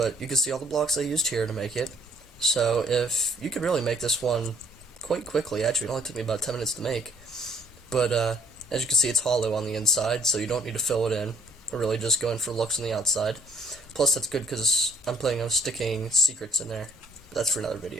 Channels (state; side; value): normal; both; correlation 0.61